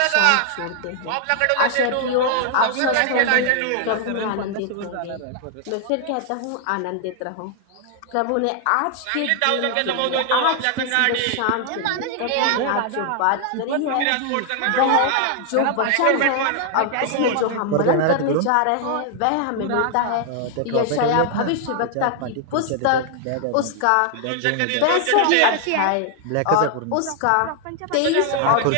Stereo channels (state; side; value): different; both; correlation 0.00